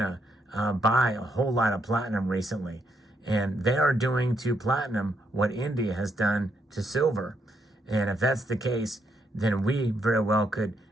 buy a whole lot of platinum recently, and they are doing to platinum what India has done to silver. And if that's the case, then we very well could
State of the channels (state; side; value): normal; both; correlation 0.76